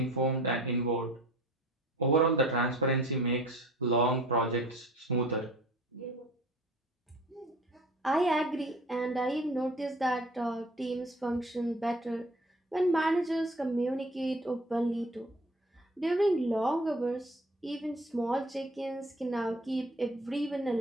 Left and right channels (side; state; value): both; normal; correlation 0.47